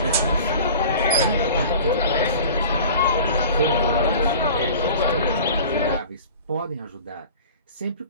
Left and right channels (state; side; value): inverted; both; correlation -0.41